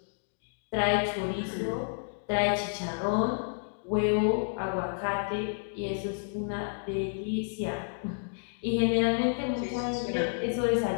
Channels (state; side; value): silent; right; digital silence